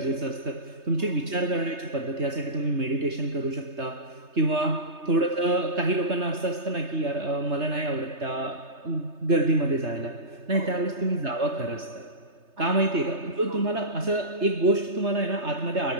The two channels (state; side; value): late; left; 3.3 ms